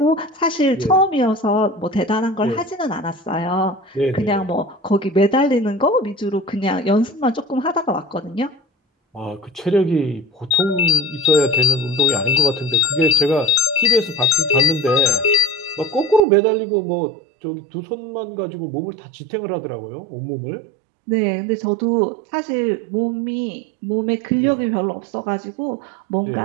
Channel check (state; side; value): drops out; left; at 16.2 s